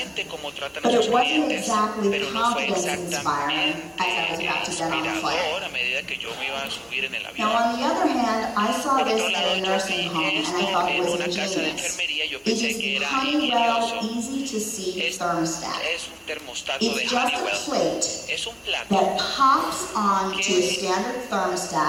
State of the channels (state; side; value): identical; both; correlation 1.00